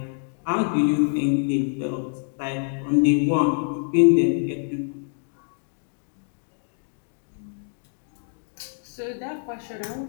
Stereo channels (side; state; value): right; silent; 61 dB below the other